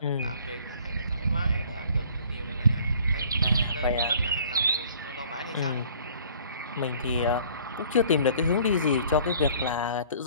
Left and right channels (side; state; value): both; inverted; correlation -0.54